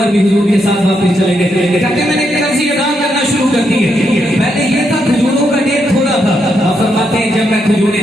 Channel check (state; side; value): normal; both; correlation 0.80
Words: بھی حضور کے ساتھ واپس چلے گئے، کہتے ہیں میں نے قرضے ادا کرنا شروع کر دیے، پہلے یہ تھا کھجوروں کا ڈھیر تھوڑا تھا، آپ فرماتے ہیں جب میں کھجوریں